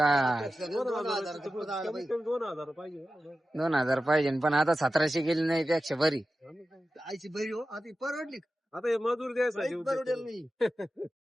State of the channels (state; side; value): normal; both; correlation 0.93